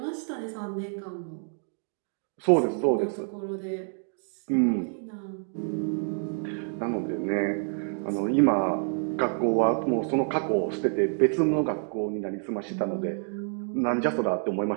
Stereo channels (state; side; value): silent; left; 59 dB below the other